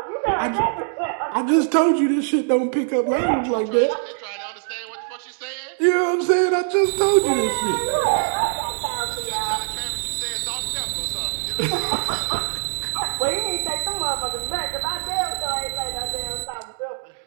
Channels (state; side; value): silent; left; digital silence